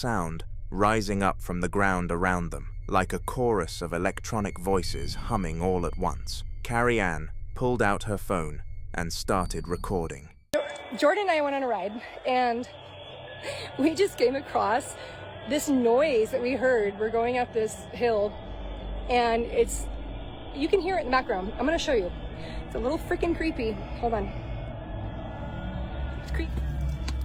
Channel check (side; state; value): both; identical; correlation 1.00